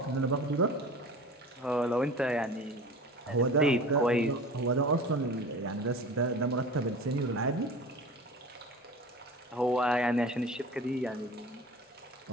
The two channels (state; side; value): normal; both; correlation 0.37